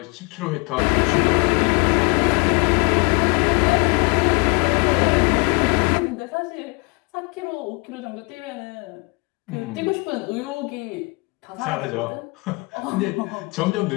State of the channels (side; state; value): right; quieter; 29.3 dB